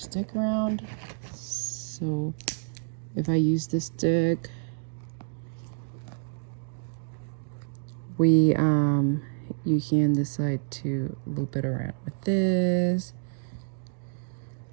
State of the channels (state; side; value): silent; left; digital silence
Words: around. So if I use this stick, you can decide to loop it around with this.